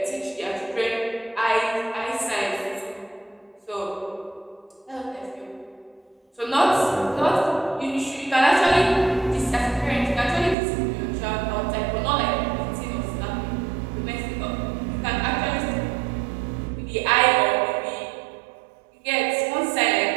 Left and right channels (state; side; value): drops out; left; at 10.6 s